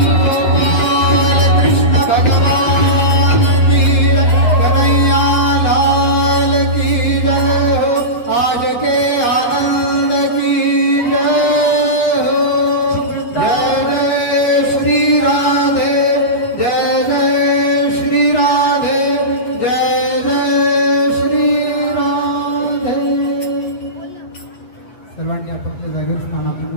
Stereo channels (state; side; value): late; right; 8.2 ms